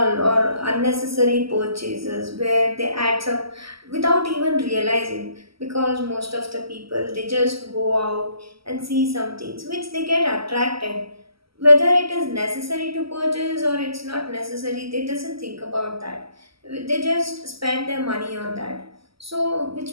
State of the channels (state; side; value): late; left; 0.75 ms